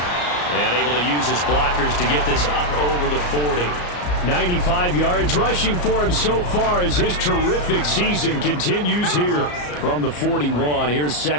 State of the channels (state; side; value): late; right; 34 ms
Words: And able to use his blockers to get this up over the 40. 95 yards rushing for him so far as his terrific season continues here from the 41. Here's